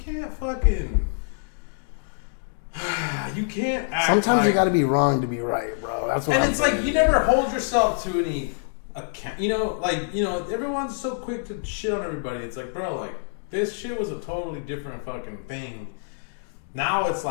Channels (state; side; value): silent; right; digital silence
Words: fucking. You can't act. Sometimes like, you got to be wrong to be right, bro. That's what. And I'm it's saying. like you never hold yourself to any account. Everyone's so quick to shit on everybody. It's like, bro, like this shit was a totally different fucking thing. Now it's